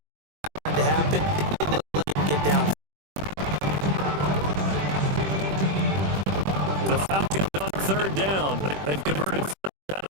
To happen. Let him get down. The Falcons on third down. They've converted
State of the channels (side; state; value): left; late; 21 ms